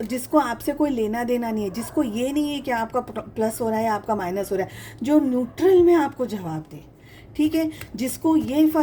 आपसे कोई लेना देना नहीं है, जिसको ये नहीं है कि आपका प्लस हो रहा है, आपका माइनस हो रहा है, जो न्यूट्रल में आपको जवाब दे, ठीक है, जिसको ये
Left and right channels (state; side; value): identical; both; correlation 1.00